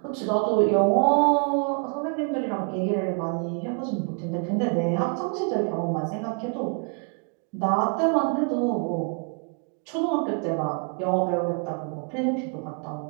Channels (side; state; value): left; quieter; 38.1 dB